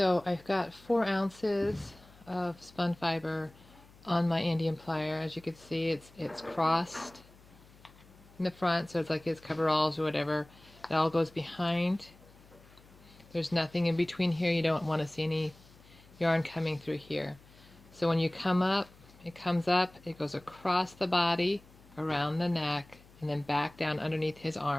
I've got 4 ounces of spun fiber on my Andean plier. As you can see, it's crossed in the front, so it's like his coveralls or whatever. It all goes behind. There's nothing in between here. You don't want to see any yarn coming through here. So when you come up, it comes up, it goes across the body, around the neck, and then back down underneath his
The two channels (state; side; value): noise; left; hum, 25 dB below the sound